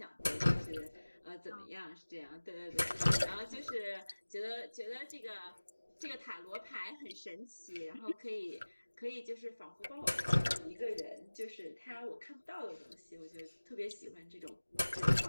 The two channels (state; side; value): inverted; both; correlation -1.00